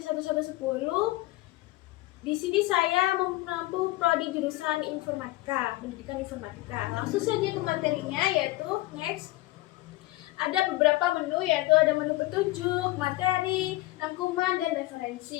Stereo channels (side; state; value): right; quieter; 18.7 dB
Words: 1110. Di sini saya menempuh prodi jurusan informatika, pendidikan informatika. Langsung saja ke materinya, yaitu next. Ada beberapa menu, yaitu ada menu petunjuk, materi, rangkuman, dan